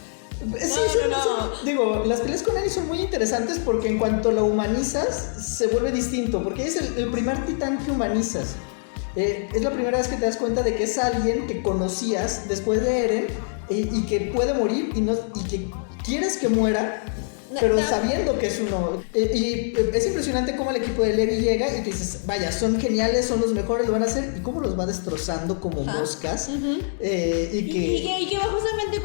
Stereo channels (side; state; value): right; silent; 62 dB below the other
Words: Digo, las peleas con Eren son muy interesantes porque en cuanto la humanizas, se vuelve distinto. Porque es el primer titán que humanizas. Es la primera vez que te das cuenta de que es alguien que conocías después de Eren y que puede morir y que quieres que muera, pero sabiendo que es uno. Y es impresionante cómo el equipo de Levi llega y tú dices, vaya, son geniales, son los mejores, lo van a hacer, y cómo los va destrozando como moscas. Y que va justamente